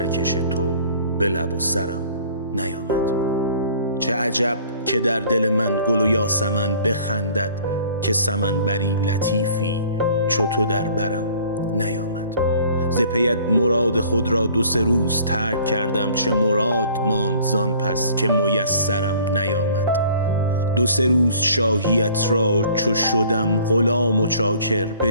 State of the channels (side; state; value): both; inverted; correlation -0.52